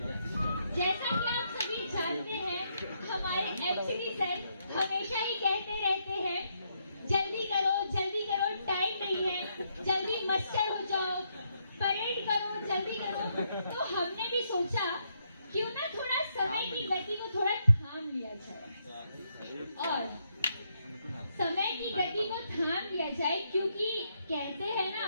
जैसा कि आप सभी जानते हैं, हमारे एमसीडी सर हमेशा ही कहते रहते हैं, जल्दी करो, टाइम नहीं है, जल्दी मस्टर हो जाओ, परेड करो, जल्दी करो। तो हमने भी सोचा क्यों ना थोड़ा समय की गति को थोड़ा थाम लिया जाए, और समय की गति को थाम लिया जाए, क्योंकि कहते हैं ना,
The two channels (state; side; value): inverted; both; correlation -0.77